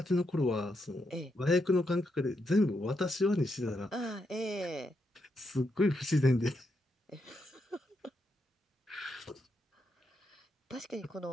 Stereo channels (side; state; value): both; normal; correlation 0.81